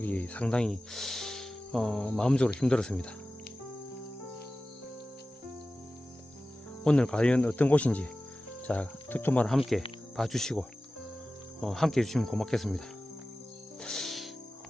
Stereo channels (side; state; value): both; normal; correlation 0.95